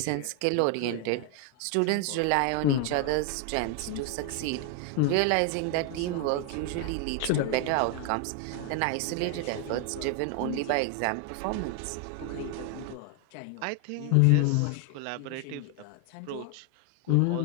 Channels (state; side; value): different; both; correlation 0.01